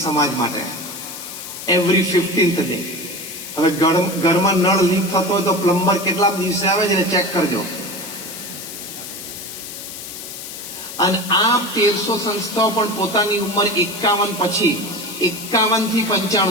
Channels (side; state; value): left; noise; hiss, 10 dB below the sound